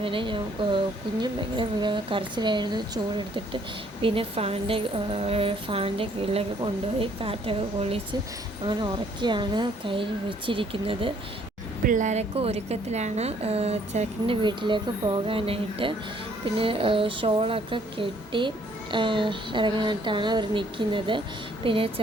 കുഞ്ഞും ഭയങ്കര കരച്ചിലായിരുന്നു. ചൂടെടുത്തിട്ട് പിന്നെ ഫാനിൻ്റെ കീഴിലൊക്കെ കൊണ്ടുപോയി കാറ്റൊക്കെ കൊള്ളിച്ച് അങ്ങനെ ഉറക്കിയാണ് കയ്യിൽ വെച്ചിരിക്കുന്നത്. പിള്ളേരൊക്കെ ഒരുക്കത്തിലാണ് ചെറുക്കൻ്റെ വീട്ടിലേക്ക് പോകാനായിട്ട്. പിന്നെ ഷോളൊക്കെ കെട്ടി ഇറങ്ങാനായിട്ടാണ് അവർ നിൽക്കുന്നത്. പിന്നെ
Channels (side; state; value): both; normal; correlation 0.64